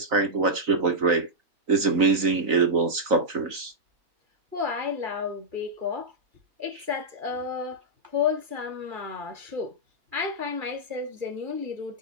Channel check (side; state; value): left; late; 3.9 ms